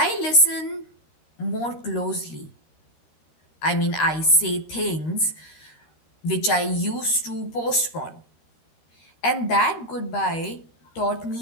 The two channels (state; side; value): late; right; 13 ms